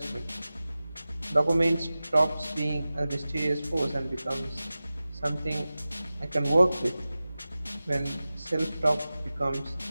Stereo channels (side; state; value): both; inverted; correlation -0.96